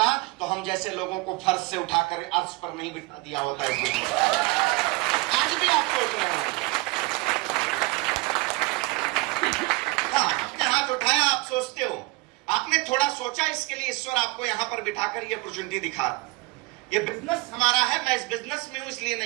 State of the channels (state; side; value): quieter; left; 23.7 dB